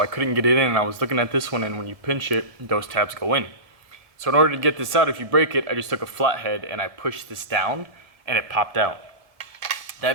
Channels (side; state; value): left; late; 1.8 ms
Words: I couldn't get it in, and I was looking at this one, and when you pinch it, those tabs go in. So in order to get this out, if you break it, I just took a flathead and I pushed this down and it popped out.